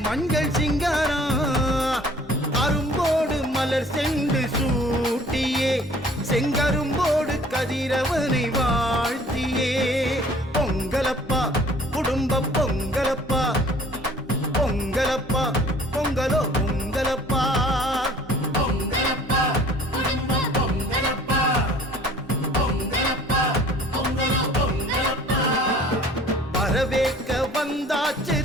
மஞ்சள் சிங்காரம், அரும்போடு மலர் சென்று சூட்டியே, செங்கரும்போடு கதிரவனை வாழ்த்தியே. பொங்கலப்பா குடும்ப பொங்கலப்பா, பொங்கலப்பா பொங்கலோ பொங்கலப்பா. பொங்கலப்பா குடும்ப பொங்கலப்பா, பொங்கலப்பா பொங்கலோ பொங்கலப்பா. வரவேற்க வந்தாச்சு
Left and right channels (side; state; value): both; normal; correlation 0.52